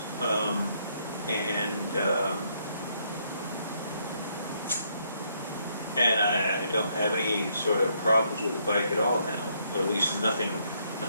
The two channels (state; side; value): inverted; both; correlation -0.72